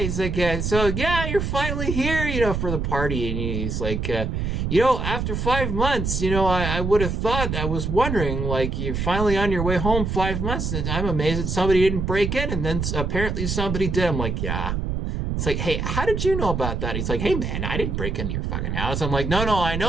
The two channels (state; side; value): noise; right; rumble, 2 dB below the sound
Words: like, so yeah, you're finally here, for the party. And he's like, after 5 months, I would have thought, I was wondering, like, you're finally on your way home 5 months, and I'm amazed that somebody didn't break in, and then apparently somebody did. I'm like, yeah. It's like, hey, how did you know about that? He's like, hey man, I didn't break into your fucking house. I'm like, no, I